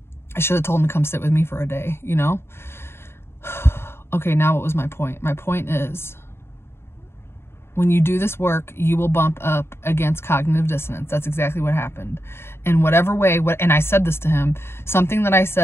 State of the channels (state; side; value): late; right; 0.12 ms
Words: should have told them to come sit with me for a day, you know. Okay, now what was my point? My point is, when you do this work, you will bump up against cognitive dissonance. That's exactly what happened. In whatever way, and I said this to him, something that I